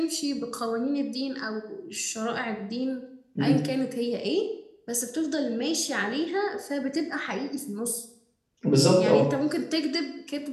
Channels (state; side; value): identical; both; correlation 1.00